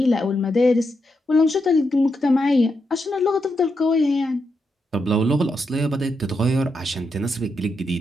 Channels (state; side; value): normal; both; correlation 0.83